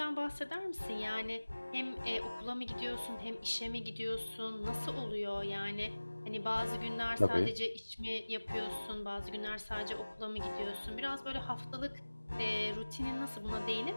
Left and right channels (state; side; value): inverted; both; correlation -1.00